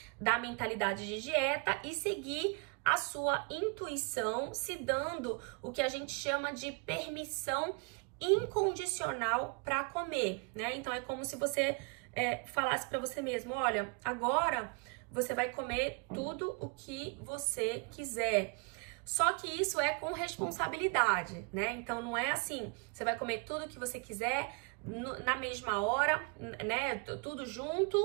da mentalidade de dieta e seguir a sua intuição, se dando o que a gente chama de permissão incondicional para comer, né? Então, é como se você falasse para você mesmo, olha, agora você vai comer tudo o que você quiser. Só que isso é com responsabilidade, né? Então não é assim, você vai comer tudo o que você quiser na mesma hora, né? Tudo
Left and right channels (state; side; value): quieter; left; 33.6 dB